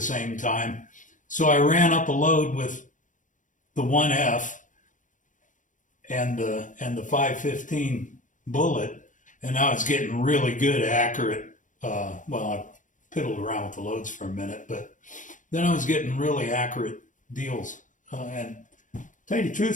time, so I ran up a load with the 1F and the 515 bullet, and I was getting really good, accurate. Well, I piddled around with the loads for a minute, but then I was getting really accurate deals. And to tell you the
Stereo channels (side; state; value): right; late; 0.37 ms